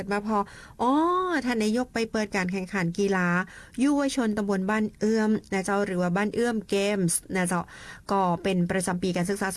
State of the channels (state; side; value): identical; both; correlation 1.00